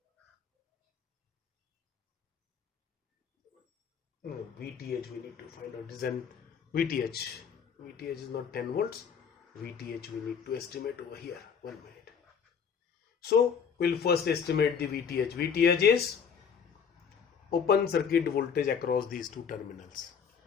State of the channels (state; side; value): quieter; right; 6.8 dB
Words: Vth we need to find out. This is an Vth. Vth is not 10 volts. Vth we need to estimate over here. 1 minute. So we'll first estimate the Vth. Vth is open circuit voltage across these two terminals.